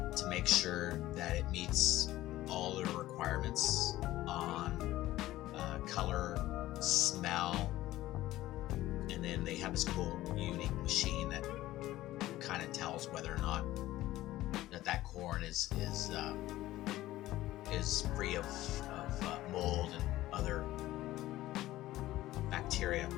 to make sure that it meets all the requirements on color, smell, and then they have this cool, unique machine that kind of tells whether or not that corn is free of mold and other bacteria.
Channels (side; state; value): right; quieter; 15.7 dB